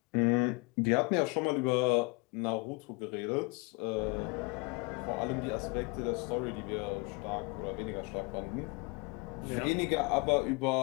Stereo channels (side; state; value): right; quieter; 27.1 dB